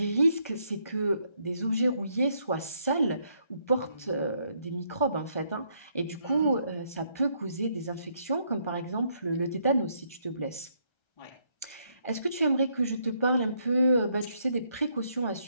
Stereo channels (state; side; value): late; right; 1.3 ms